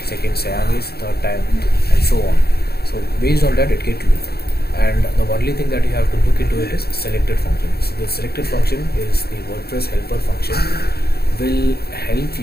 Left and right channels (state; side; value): late; right; 0.46 ms